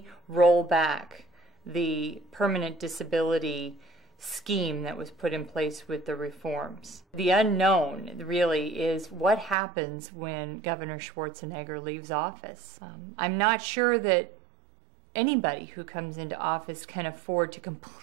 roll back the permanent disability scheme that was put in place with the reforms. The unknown really is what happens when Governor Schwarzenegger leaves office. I'm not sure that anybody who comes into office can afford to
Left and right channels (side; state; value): left; drops out; at 9.6 s